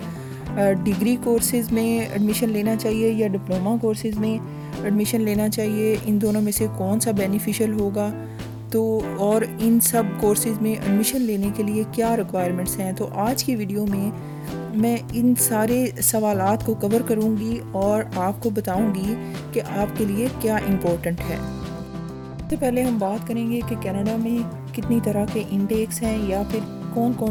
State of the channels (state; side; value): identical; both; correlation 1.00